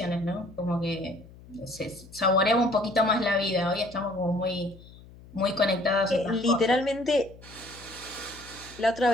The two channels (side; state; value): left; noise; hum, 21 dB below the sound